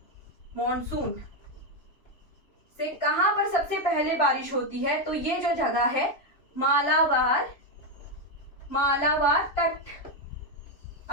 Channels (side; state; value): right; late; 3.0 ms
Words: मॉनसून से कहां पर सबसे पहले बारिश होती है, तो ये जो जगह है मालाबार तट।